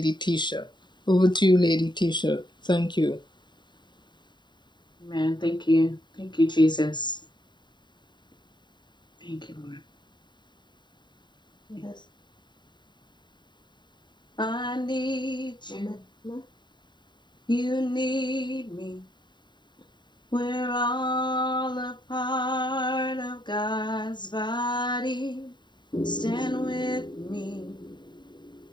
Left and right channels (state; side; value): late; right; 0.22 ms